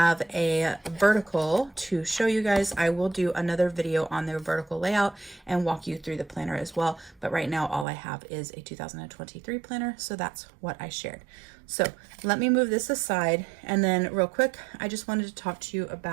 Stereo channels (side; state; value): left; drops out; at 7.9 s